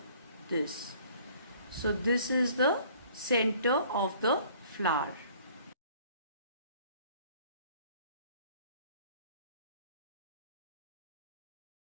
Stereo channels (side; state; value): both; inverted; correlation -0.55